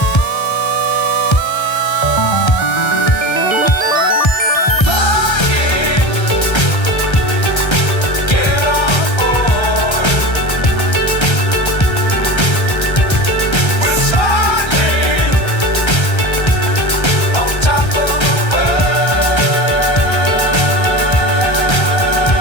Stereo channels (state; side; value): late; right; 1.3 ms